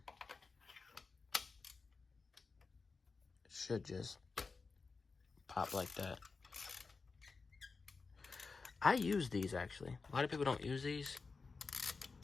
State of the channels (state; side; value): quieter; right; 4.4 dB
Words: it should just pop like that. I use these actually. A lot of people don't use these.